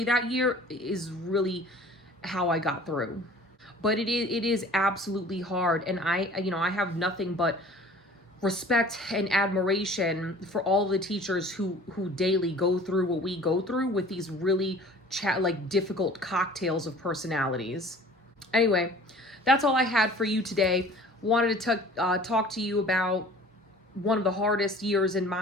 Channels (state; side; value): normal; both; correlation 0.47